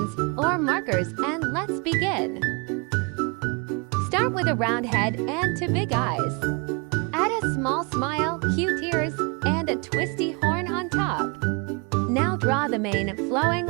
or markers and let's begin. Start with a round head and two big eyes. Add a small smile, cute ears, and a twisty horn on top. Now draw the mane flowing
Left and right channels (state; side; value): quieter; left; 31.5 dB